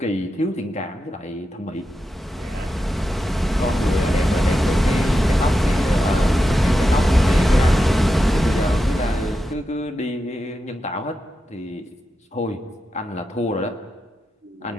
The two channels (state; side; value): normal; both; correlation 0.89